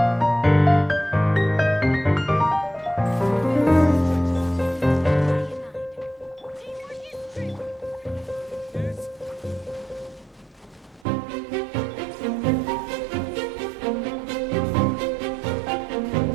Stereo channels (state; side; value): drops out; left; at 11.1 s